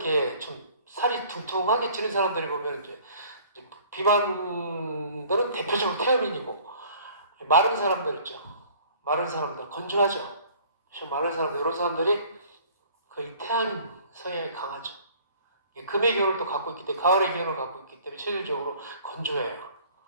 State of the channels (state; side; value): inverted; both; correlation -0.52